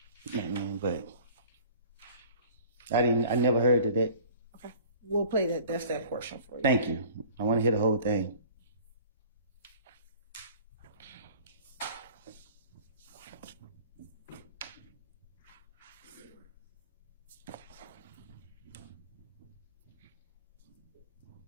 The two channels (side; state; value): both; inverted; correlation -0.48